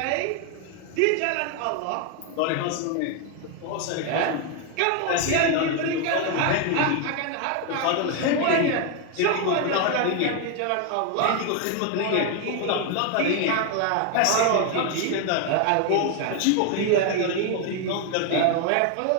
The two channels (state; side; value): different; both; correlation 0.01